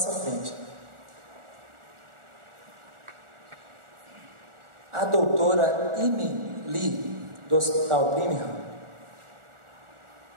frente. A doutora Amy Lee, do Hospital Brigham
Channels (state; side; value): late; left; 1.4 ms